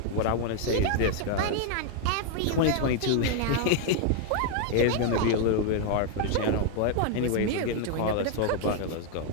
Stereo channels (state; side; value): different; both; correlation 0.00